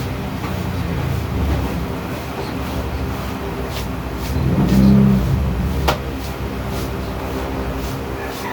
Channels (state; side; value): identical; both; correlation 1.00